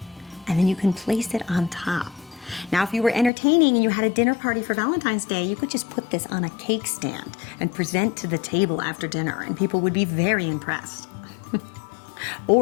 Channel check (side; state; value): right; drops out; at 3.3 s